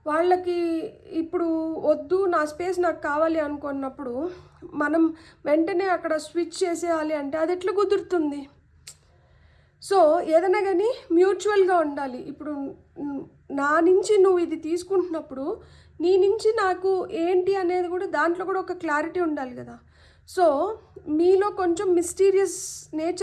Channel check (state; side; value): identical; both; correlation 1.00